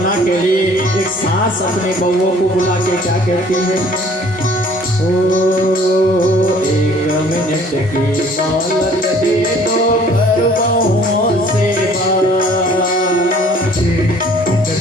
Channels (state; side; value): normal; both; correlation 0.55